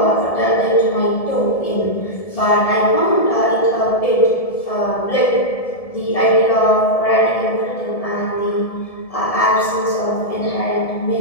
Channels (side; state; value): right; late; 1.7 ms